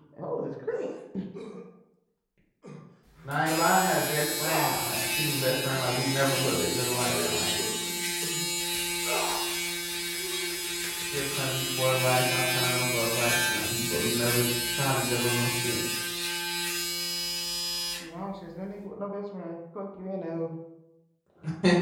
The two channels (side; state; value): both; identical; correlation 1.00